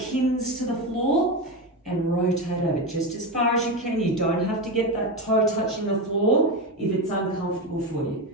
to the floor and rotate over just as far as you can. You don't have to get that toe touching the floor if it's uncomfortable for you.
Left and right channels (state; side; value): normal; both; correlation 0.16